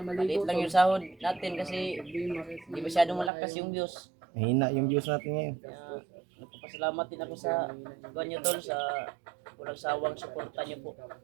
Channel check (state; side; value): drops out; left; at 3.3 s